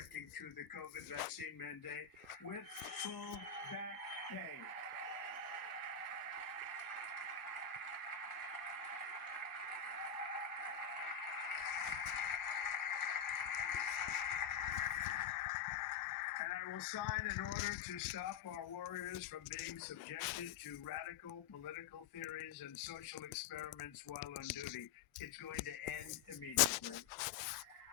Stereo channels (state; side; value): quieter; right; 7.0 dB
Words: to the COVID vaccine mandate with full back pay. And I will sign an order to stop our warriors from being subjected to radical political theories and social experiments while on duty. It's going to end immediately.